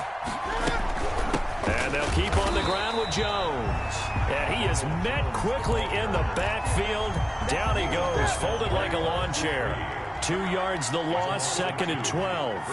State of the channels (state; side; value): identical; both; correlation 1.00